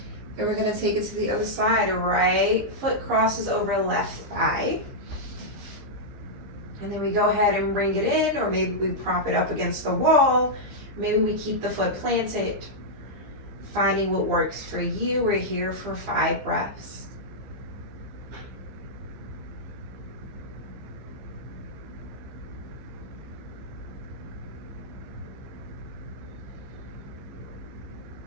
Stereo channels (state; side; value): late; left; 15 ms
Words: And we're going to take it to the other side. Right foot crosses over left thigh. And then we go ahead and bring it in, or maybe we prop it up against the wall. Maybe we keep the foot planted. Finding what works for you. We're here for 5 breaths.